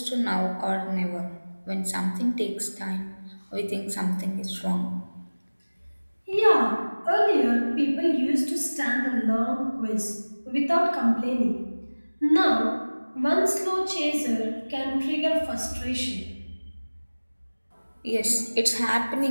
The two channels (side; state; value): both; inverted; correlation -1.00